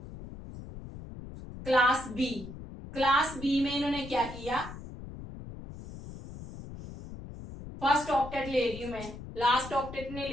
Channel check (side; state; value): left; noise; rumble, 12 dB below the sound